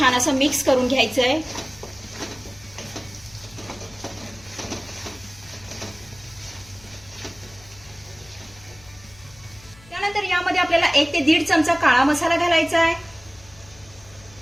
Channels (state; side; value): noise; left; hum, 24 dB below the sound